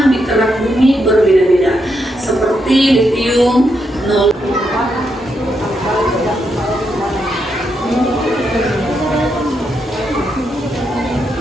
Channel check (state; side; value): normal; both; correlation 0.81